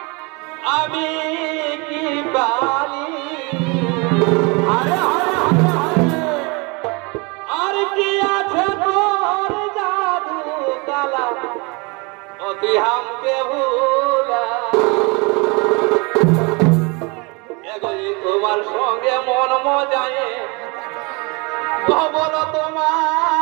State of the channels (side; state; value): left; quieter; 28.8 dB